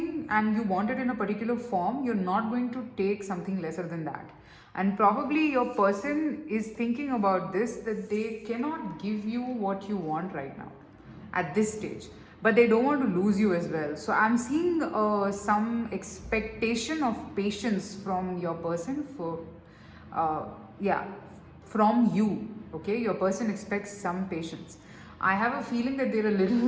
and you want it in a particular form. You're not going to take something lesser than that. And probably your person is thinking about this, that they cannot give you what you want right now at this stage, but they don't want to lose you as well. So I'm seeing some expectation of patience from your person from you. Okay, your person expects some patience. I have a feeling that they're a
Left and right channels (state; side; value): identical; both; correlation 1.00